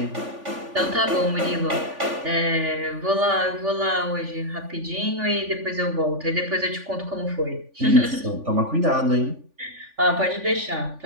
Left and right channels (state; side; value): late; left; 3.5 ms